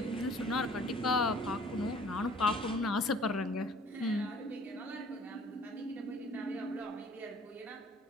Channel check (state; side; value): normal; both; correlation 0.53